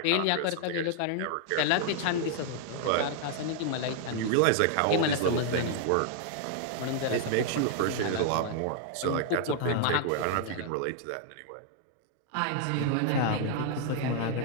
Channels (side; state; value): both; different; correlation 0.00